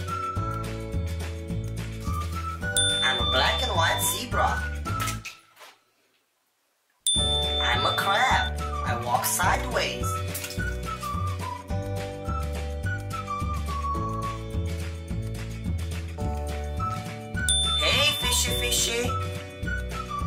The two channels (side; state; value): both; identical; correlation 1.00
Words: I'm a black and white zebra. I'm a crab. I walk sideways. Hey, fishy fishy.